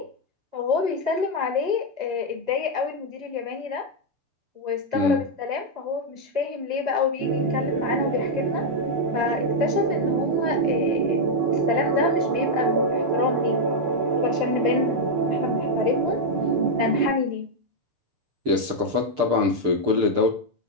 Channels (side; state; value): left; late; 6.8 ms